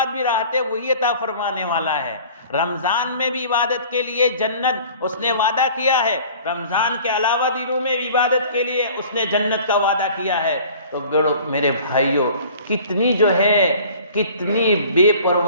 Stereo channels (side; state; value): both; inverted; correlation -0.47